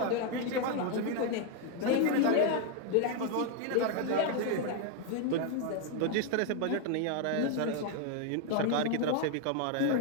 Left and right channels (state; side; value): different; both; correlation 0.01